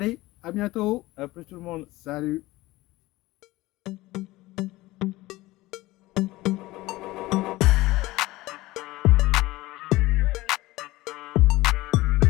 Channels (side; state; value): right; quieter; 18.9 dB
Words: à bientôt. À plus tout le monde. Salut.